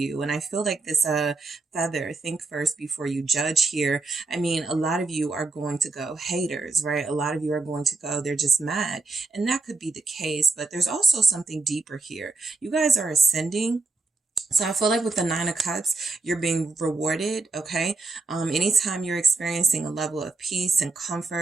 And I feel like this Feather, think first before you judge here. I mean, a lot of you are going to go haters, right? A lot of you are going to go, they're just mad. And that could be the case, but there's also something deeper here. You guys are ascending. So I feel like with the 9 of Cups, you're being rewarded, okay? Anytime you're experiencing a level of peace and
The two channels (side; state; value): left; quieter; 3.7 dB